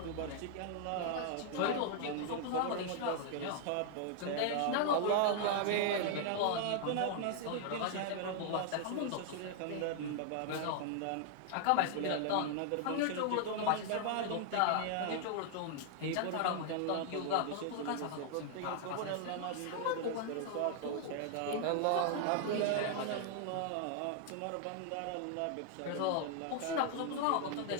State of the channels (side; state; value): both; different; correlation 0.00